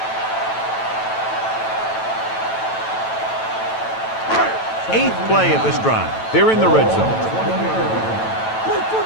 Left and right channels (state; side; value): late; right; 9.1 ms